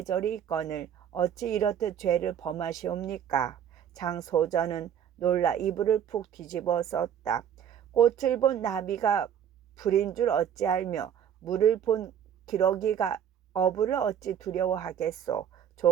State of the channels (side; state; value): left; quieter; 9.1 dB